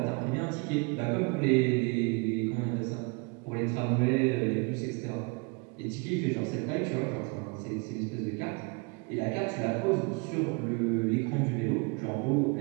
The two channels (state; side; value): quieter; left; 31.6 dB